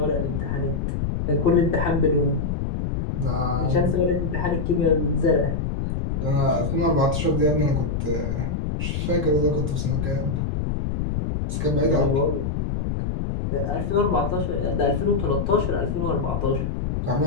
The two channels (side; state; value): left; noise; rumble, 1 dB below the sound